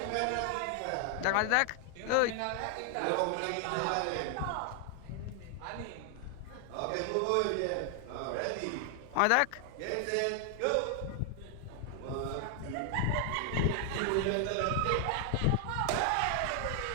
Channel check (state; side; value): different; both; correlation 0.00